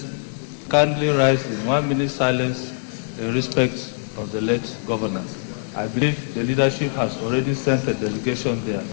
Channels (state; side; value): silent; right; digital silence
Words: kindly rise in 1-minute silence in respect of the late governor. I believe the leadership has already sent a delegation there,